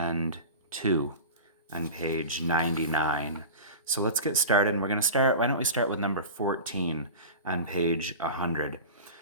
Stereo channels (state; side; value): inverted; both; correlation -0.32